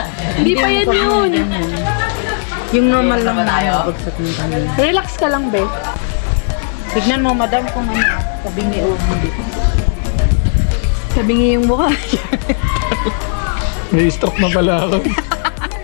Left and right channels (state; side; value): silent; right; digital silence